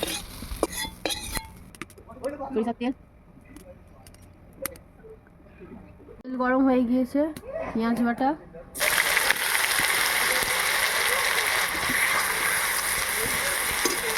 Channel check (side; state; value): both; identical; correlation 1.00